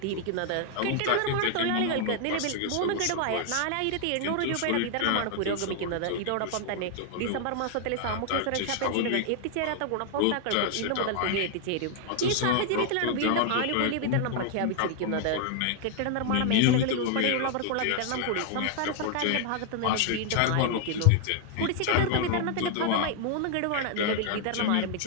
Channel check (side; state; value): both; different; correlation 0.00